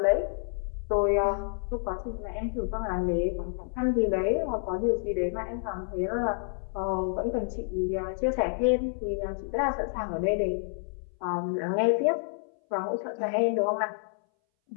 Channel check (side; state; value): right; silent; 59 dB below the other